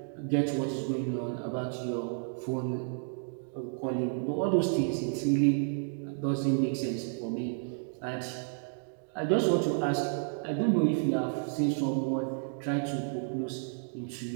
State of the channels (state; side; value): silent; left; digital silence